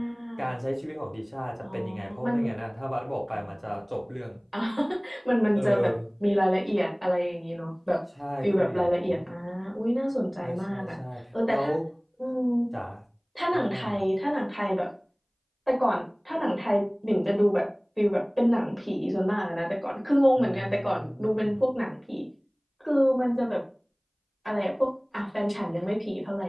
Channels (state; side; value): identical; both; correlation 1.00